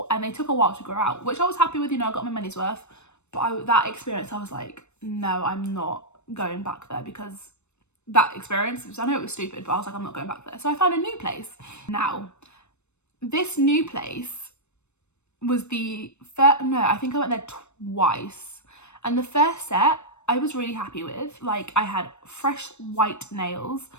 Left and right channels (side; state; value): right; late; 0.82 ms